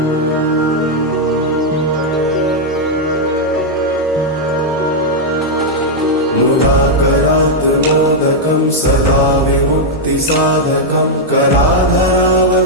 मुदाकरात्मोदकं सदा विमुक्तिसाधकं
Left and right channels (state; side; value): normal; both; correlation -0.03